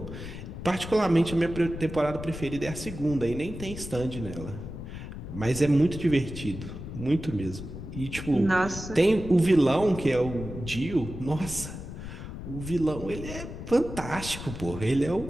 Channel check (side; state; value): left; noise; rumble, 9 dB below the sound